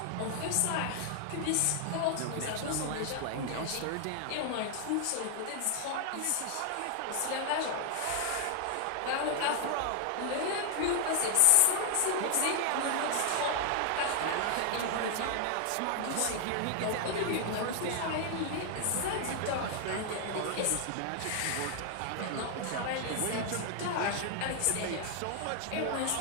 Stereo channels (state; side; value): different; both; correlation 0.00